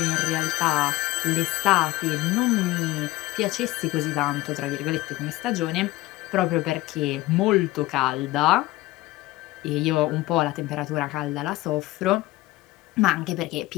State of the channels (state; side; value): quieter; right; 18.0 dB